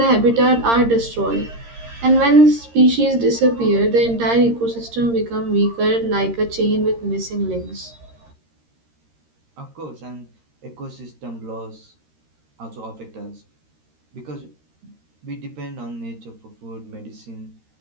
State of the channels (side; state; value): left; late; 13 ms